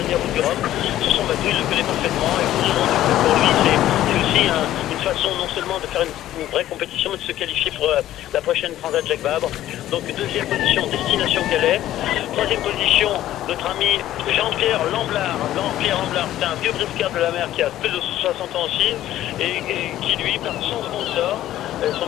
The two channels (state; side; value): quieter; right; 13.4 dB